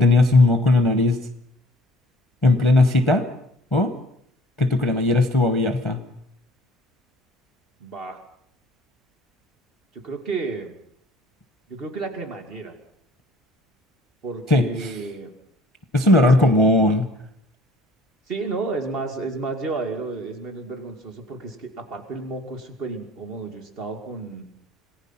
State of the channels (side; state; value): both; normal; correlation 0.56